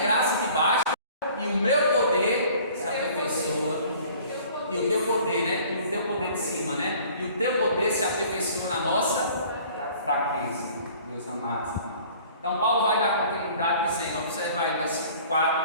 te basta e o meu poder se aperfeiçoa, e o teu poder, né? E o teu poder de cima, né? E o teu poder se aperfeiçoa na nossa fraqueza, meus amados irmãos. Então Paulo vai dar continuidade dizendo, observa aí versículo 4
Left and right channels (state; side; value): inverted; both; correlation -0.51